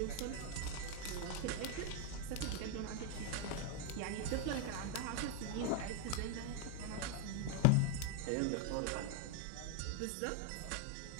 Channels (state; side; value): different; both; correlation 0.01